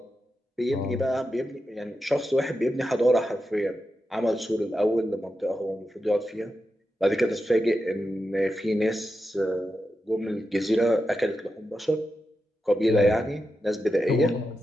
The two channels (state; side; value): normal; both; correlation 0.89